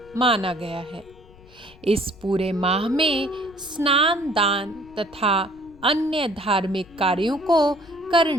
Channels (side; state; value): left; noise; rumble, 24 dB below the sound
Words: माना गया है। इस पूरे माह में स्नान, दान तथा अन्य धार्मिक कार्यों को